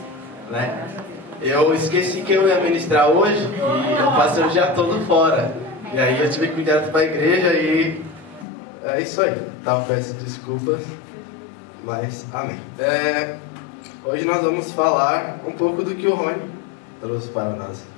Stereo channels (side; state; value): right; drops out; at 8.5 s